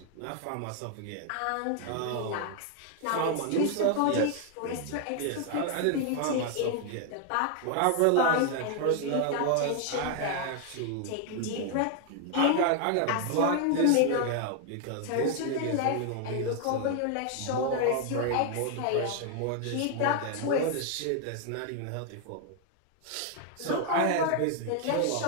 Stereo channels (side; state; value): both; different; correlation 0.00